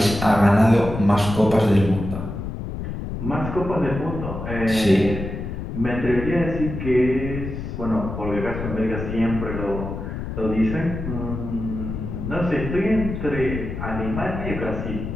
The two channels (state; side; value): noise; left; rumble, 6 dB below the sound